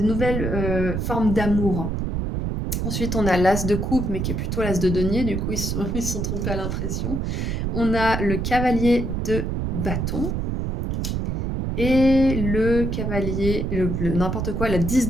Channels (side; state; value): right; noise; rumble, 1 dB below the sound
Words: nouvelles formes d'amour. Ensuite, on a l'as de coupe, mais qui est plutôt l'as de denier, du coup, ils se sont trompés à l'impression. On a le cavalier de bâton et le cavalier, n'importe quoi, la 10